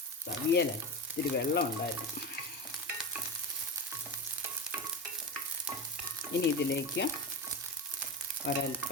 അവിയല ഇത്തിരി വെള്ളം ഉണ്ടായിരുന്നു. ഇനി ഇതിലേക്ക്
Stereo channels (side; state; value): both; normal; correlation 0.21